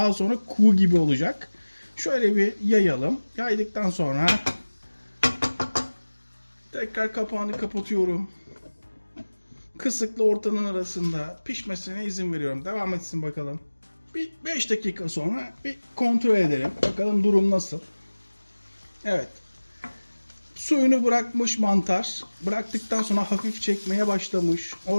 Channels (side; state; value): both; inverted; correlation -1.00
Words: sonra kuğu gibi olacak. Şöyle bir yayalım. Yaydıktan sonra tekrar kapağını kapatıyorum. Kısıkla ortanın arasında pişmesine izin veriyorum. Devam etsin bakalım. Bir 5 dakika sonra bir kontrol edelim. Bakalım durum nasıl. Evet. Suyunu bırakmış mantar. Bıraktıktan sonra hafif çekmeye başlamış.